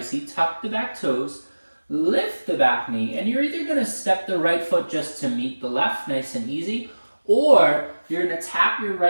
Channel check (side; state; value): both; inverted; correlation -1.00